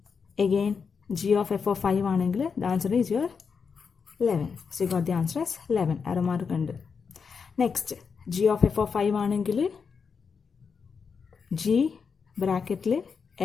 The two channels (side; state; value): right; quieter; 5.8 dB